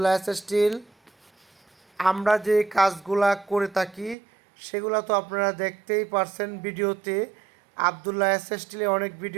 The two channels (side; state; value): left; drops out; at 4.2 s